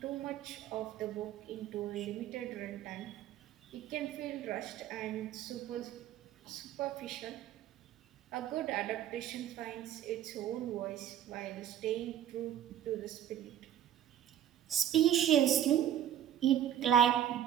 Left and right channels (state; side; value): quieter; left; 10.8 dB